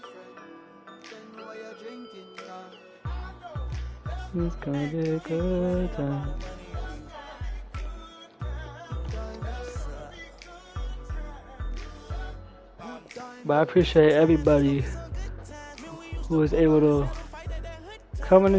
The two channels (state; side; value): identical; both; correlation 1.00